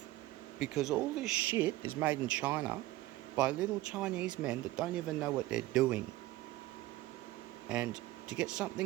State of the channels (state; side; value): quieter; left; 17.0 dB